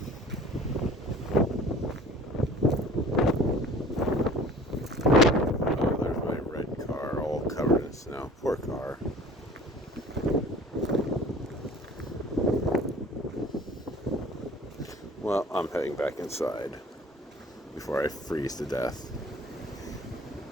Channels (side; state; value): both; normal; correlation 0.47